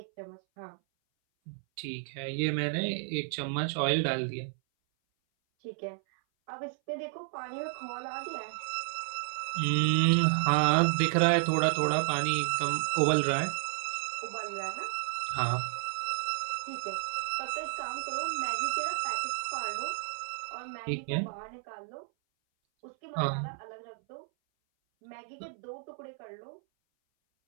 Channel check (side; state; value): left; silent; 56 dB below the other